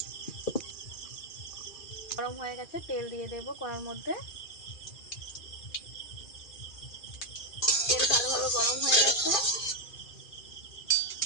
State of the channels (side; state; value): right; late; 2.4 ms